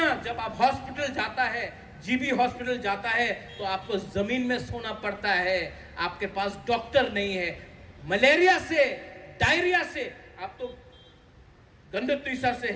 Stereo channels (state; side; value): identical; both; correlation 1.00